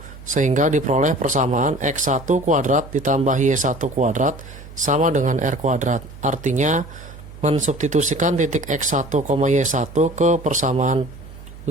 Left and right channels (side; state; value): right; noise; hum, 17 dB below the sound